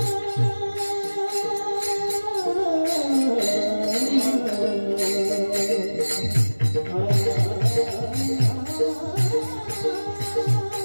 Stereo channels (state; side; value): inverted; both; correlation -1.00